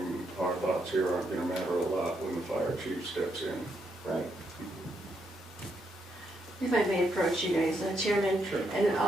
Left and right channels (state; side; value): normal; both; correlation 0.78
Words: our thoughts here aren't gonna matter a lot when the fire chief steps in. Right. If I may approach you guys, Chairman, Sure. and